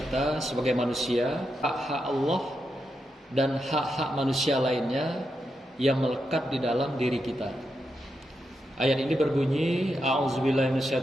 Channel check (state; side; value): normal; both; correlation 0.85